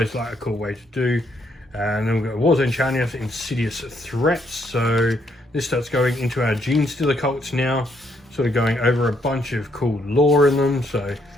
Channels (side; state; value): both; normal; correlation 0.73